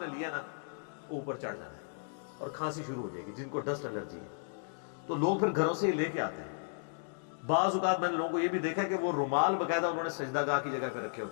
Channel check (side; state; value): right; silent; digital silence